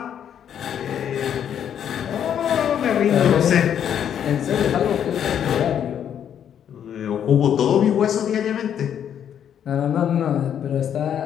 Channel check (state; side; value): quieter; right; 9.1 dB